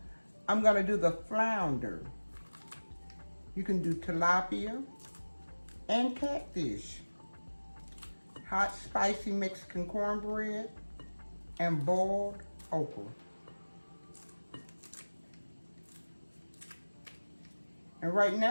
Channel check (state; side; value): inverted; both; correlation -1.00